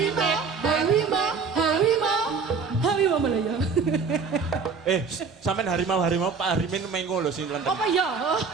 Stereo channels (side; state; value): left; quieter; 5.3 dB